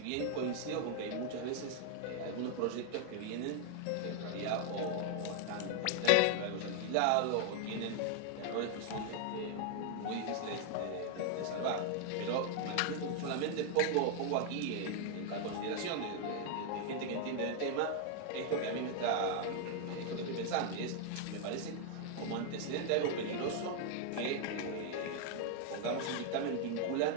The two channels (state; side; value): different; both; correlation 0.00